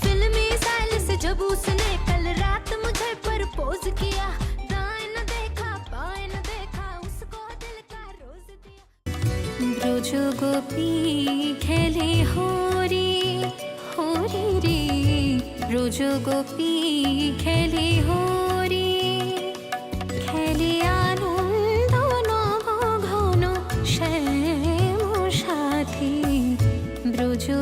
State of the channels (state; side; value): identical; both; correlation 1.00